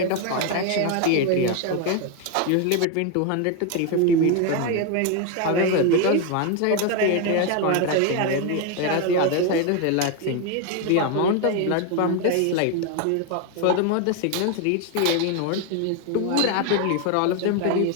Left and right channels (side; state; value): both; different; correlation 0.01